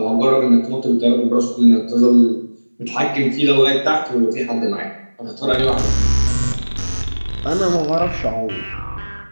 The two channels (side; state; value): both; inverted; correlation -1.00